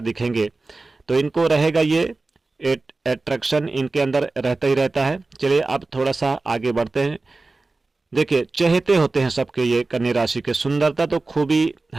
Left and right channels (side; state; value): left; quieter; 3.4 dB